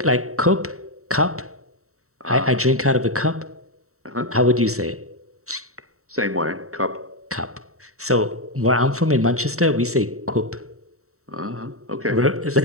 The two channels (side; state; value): left; late; 0.64 ms